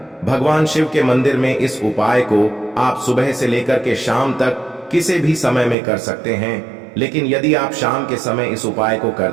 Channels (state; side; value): drops out; left; at 5.8 s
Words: भगवान शिव के मंदिर में। इस उपाय को आप सुबह से लेकर के शाम तक किसी भी समय में कर सकते हैं, लेकिन यदि आप शाम के समय इस उपाय को